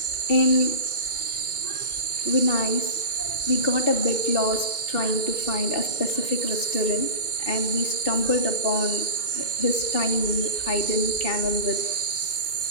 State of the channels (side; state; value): right; late; 2.1 ms